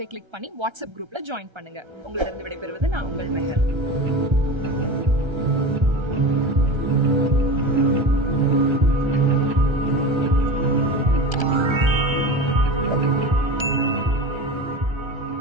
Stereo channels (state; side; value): late; left; 1.3 ms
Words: கிளிக் பண்ணி வாட்ஸ்அப் குரூப்ல ஜாயின் பண்ணுங்க. உங்களிடம் விடைபெறுவது நான் உங்கள் மெஹர்.